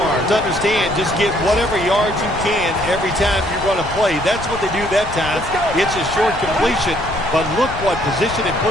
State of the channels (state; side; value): noise; left; rumble, 11 dB below the sound